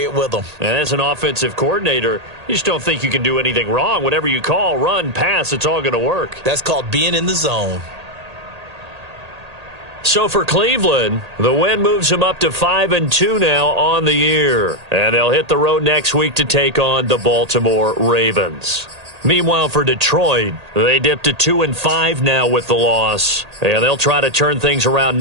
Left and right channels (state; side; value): late; left; 1.8 ms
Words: it with them. And as an offensive coordinator, you just don't think you can do anything wrong. Whatever you call, run, pass, it's all going to work. That's called being in the zone. So for Cleveland, the win moves them up to 5-2 now on the year. And they'll hit the road next week to take on the Baltimore Ravens. Meanwhile, for Detroit, they dipped to 2-5 now with the loss. And they'll try to turn things around